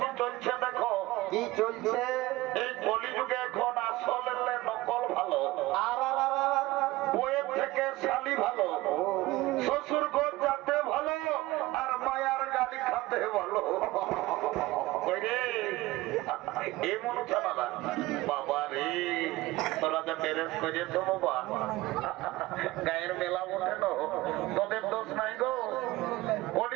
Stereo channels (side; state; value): left; quieter; 19.1 dB